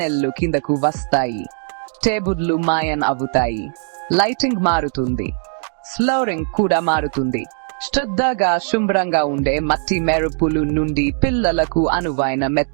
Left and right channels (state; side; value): silent; left; 66 dB below the other